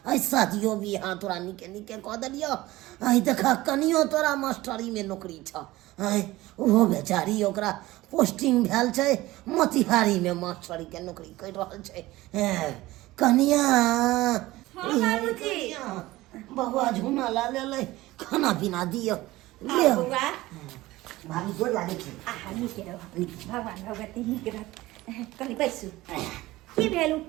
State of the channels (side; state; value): left; quieter; 18.1 dB